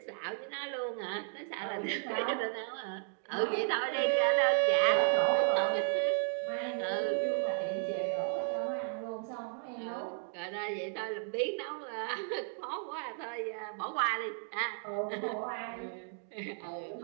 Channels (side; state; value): left; silent; 55 dB below the other